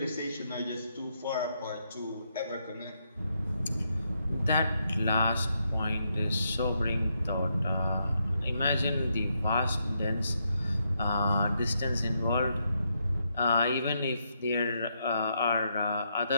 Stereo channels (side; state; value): both; inverted; correlation -0.79